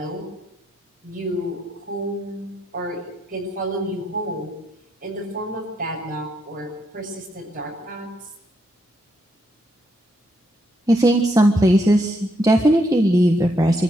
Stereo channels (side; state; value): both; normal; correlation 0.77